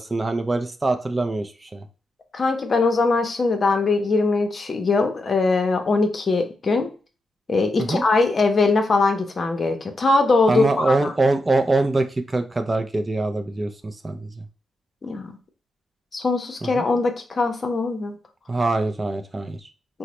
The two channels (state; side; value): normal; both; correlation 0.85